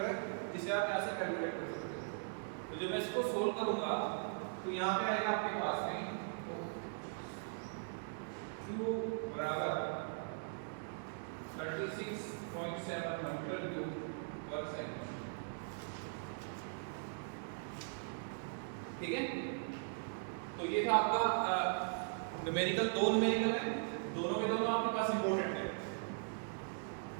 है, इसे आप यहाँ से कैलकुलेट कर सकते हो। तो जब मैं इसको सोल्व करूंगा तो यहाँ पे आएगा आपके पास में q बराबर 36.7 मीटर क्यूब पर सेकंड, ठीक है। तो ये था आपका न्यूमेरिकल, दो न्यूमेरिकल है, दोनों के दोनों आपके पास इंपॉर्टेंट है,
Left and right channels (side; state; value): left; silent; digital silence